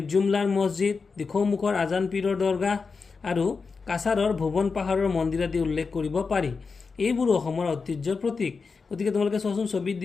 মছজিদ, দিখৌমুখৰ আজান পীৰৰ দৰগাহ আৰু কাছাৰৰ ভুৱন পাহাৰৰ মন্দিৰ আদি উল্লেখ কৰিব পাৰি। এইবোৰো অসমৰ ঐতিহ্যৰ প্ৰতীক। গতিকে তোমালোকে চোৱাচোন, ছবিত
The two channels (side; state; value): right; quieter; 4.8 dB